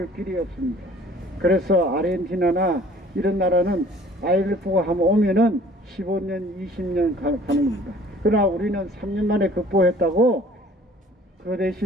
길이 없습니다. 그래서 아르헨티나나 이런 나라는 IMF가 한번 오면은 15년, 20년 가는 겁니다. 그러나 우리는 3년 만에 극복했다고, 그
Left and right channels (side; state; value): both; normal; correlation 0.52